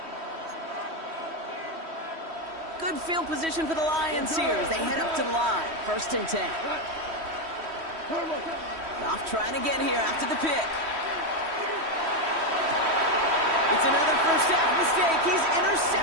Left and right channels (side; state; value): left; late; 3.1 ms